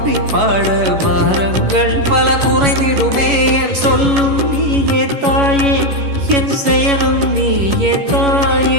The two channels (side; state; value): left; late; 11 ms